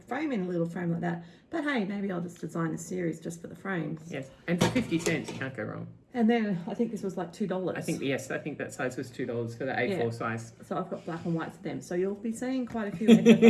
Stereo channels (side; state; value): both; identical; correlation 1.00